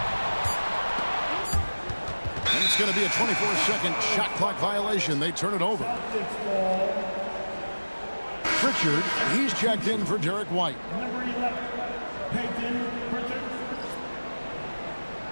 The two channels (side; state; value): both; inverted; correlation -1.00